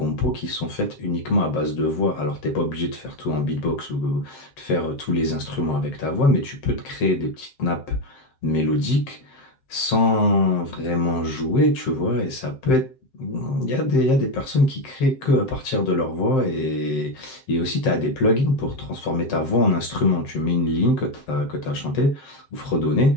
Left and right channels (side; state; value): right; late; 7.6 ms